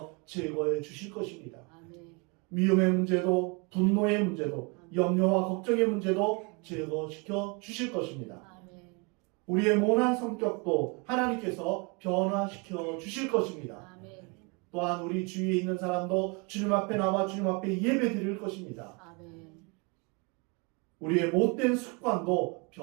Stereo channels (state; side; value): quieter; left; 31.4 dB